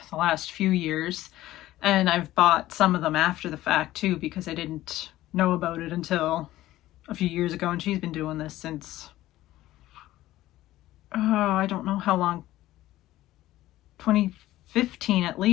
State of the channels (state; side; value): quieter; right; 15.4 dB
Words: the last few years, and I've bought some of them after the fact too, because I didn't know about it until a few years ago, and she's been doing this since, oh, I don't know how long, 2015 at